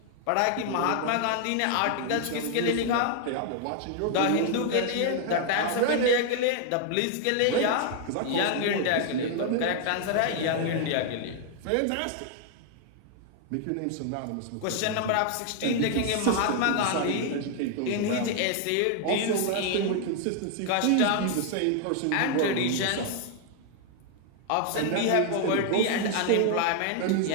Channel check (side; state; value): both; different; correlation 0.00